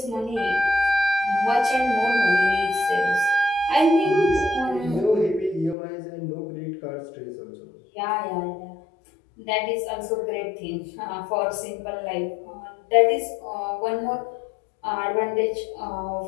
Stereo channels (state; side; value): drops out; right; at 5.8 s